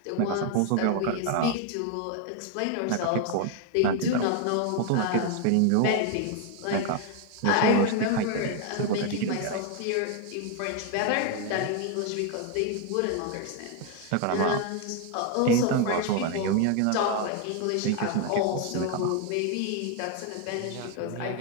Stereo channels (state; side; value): different; both; correlation 0.01